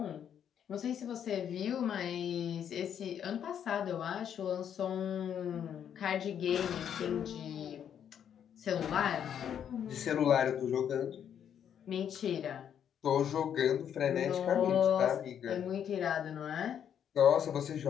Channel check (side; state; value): right; quieter; 8.9 dB